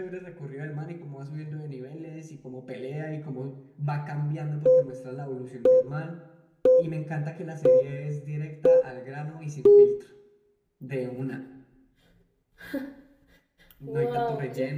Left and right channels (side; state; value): both; identical; correlation 1.00